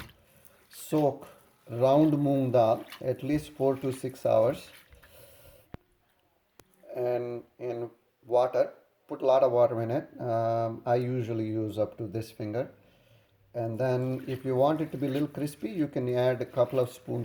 soak round moong dal at least 4 to 6 hours and in water. Put a lot of water in it. I usually use up to this finger. And then if you want it to be a little crispy, you can add a couple of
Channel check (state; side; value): identical; both; correlation 1.00